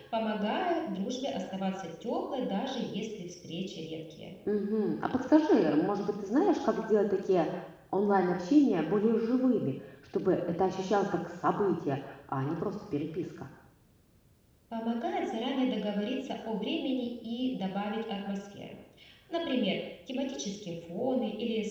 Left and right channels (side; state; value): both; identical; correlation 1.00